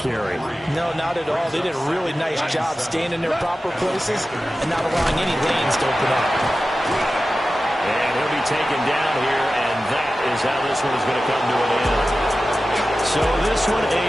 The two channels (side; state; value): both; normal; correlation 0.94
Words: No, not at all. They did a really nice job staying in their proper places and not allowing any lanes to open up. And he'll be taken down here, and that is how this one is going to come to an end. So this one a